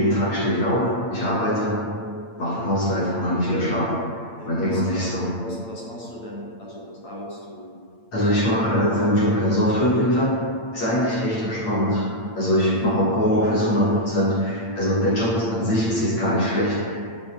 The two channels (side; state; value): right; late; 8.8 ms